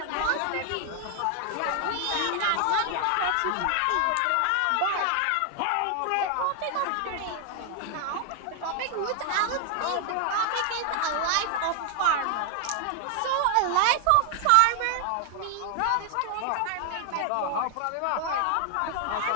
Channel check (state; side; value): different; both; correlation 0.00